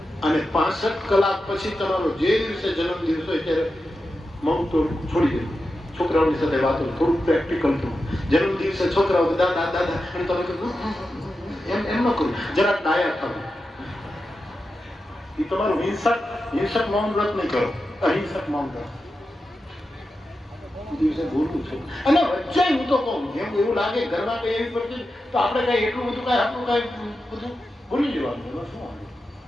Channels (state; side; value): normal; both; correlation 0.90